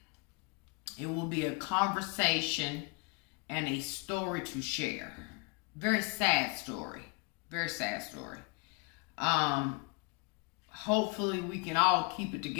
It will be a conversation and a story to share. Very sad story. Very sad story. Hopefully we can all keep it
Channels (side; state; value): right; quieter; 29.6 dB